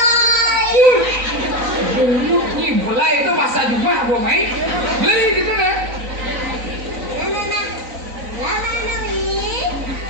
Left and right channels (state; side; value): late; left; 3.9 ms